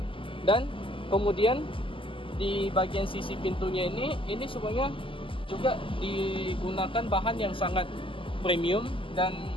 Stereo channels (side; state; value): right; late; 0.25 ms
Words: Dan kemudian di bagian sisi pintunya ini semuanya juga digunakan bahan yang sangat premium, dan